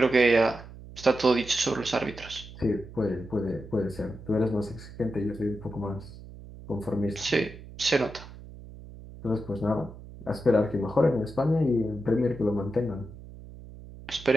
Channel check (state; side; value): noise; right; hum, 16 dB below the sound